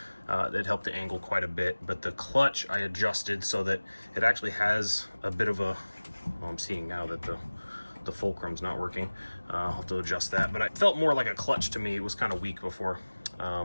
that helped the angle quite a bit. But the clutch I adjusted so that it actually has a bit of a, well, I'm seeing now that the fulcrum's not working. I'll have to adjust that, but it felt more like a clutch to me. It was kind of weak before.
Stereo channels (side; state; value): both; inverted; correlation -1.00